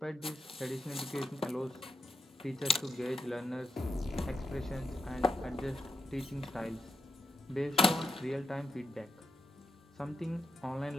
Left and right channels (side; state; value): both; normal; correlation 0.86